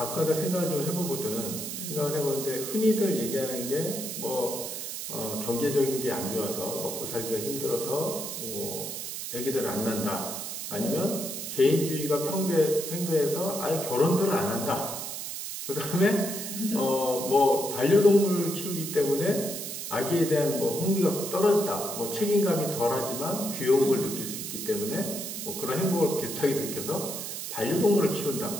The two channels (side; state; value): right; noise; hiss, 6 dB below the sound